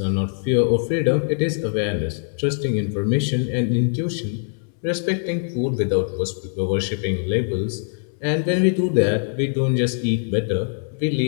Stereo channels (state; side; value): silent; right; digital silence